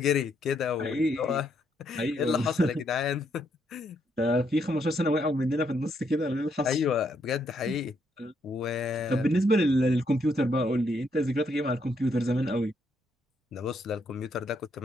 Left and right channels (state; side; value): normal; both; correlation 0.74